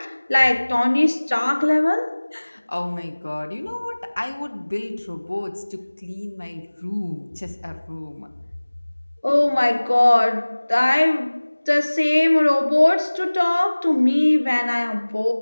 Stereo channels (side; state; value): both; inverted; correlation -1.00